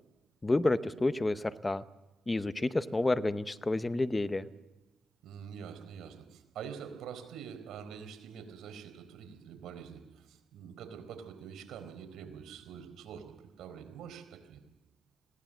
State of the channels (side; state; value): both; normal; correlation 0.95